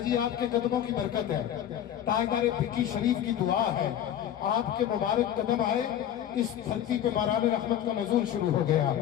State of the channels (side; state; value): right; quieter; 10.5 dB